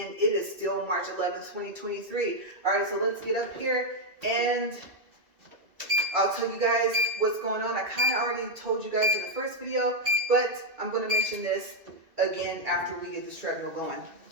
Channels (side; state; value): left; late; 2.3 ms